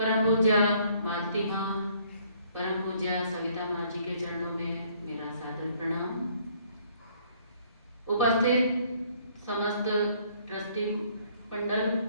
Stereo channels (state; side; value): inverted; both; correlation -0.63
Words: पूज्य मालती माँ, परम पूज्य सविता माँ जी के चरणों में मेरा सादर प्रणाम। उपस्थित समस्त ट्रस्टी मंडल,